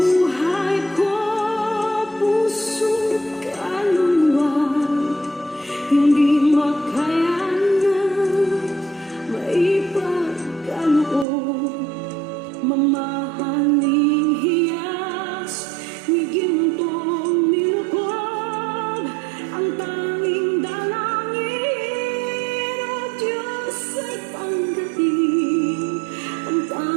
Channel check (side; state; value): left; drops out; at 11.2 s